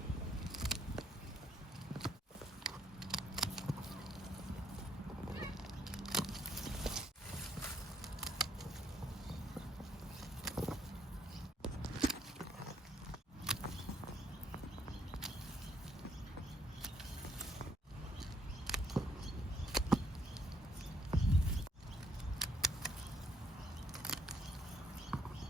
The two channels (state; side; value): normal; both; correlation 0.70